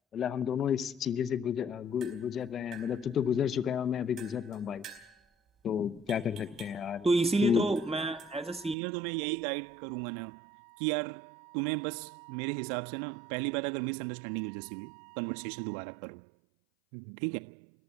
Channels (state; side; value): drops out; left; at 8.8 s